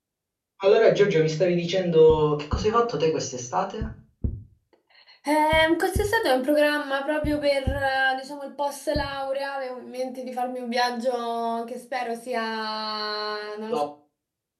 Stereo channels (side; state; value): both; identical; correlation 1.00